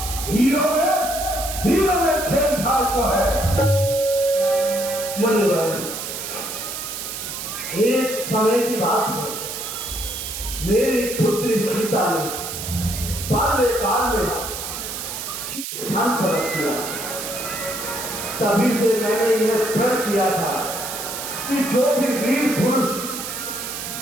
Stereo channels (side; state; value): right; noise; hiss, 6 dB below the sound